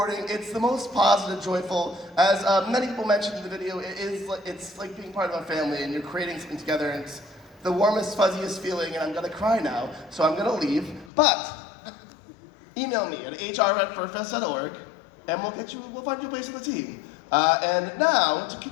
It's the most positive, joyful. As many people mentioned in the video, it's like being part of a family, and you're creating something together, and it's the warmest, fuzziest feeling, and I'm going to cry now, so I'm going to leave. But email me at hr@furfest.org, and we'll find you a place in the team. And now, to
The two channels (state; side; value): drops out; right; at 11.1 s